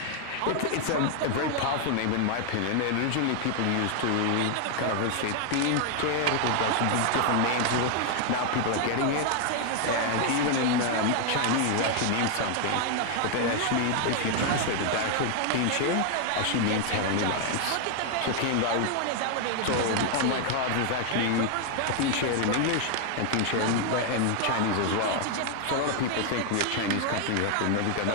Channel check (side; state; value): both; different; correlation 0.00